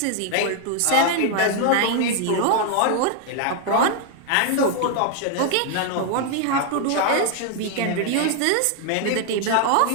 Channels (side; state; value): both; different; correlation 0.00